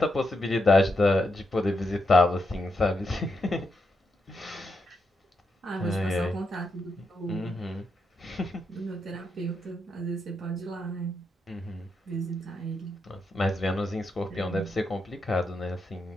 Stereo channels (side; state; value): both; normal; correlation 0.83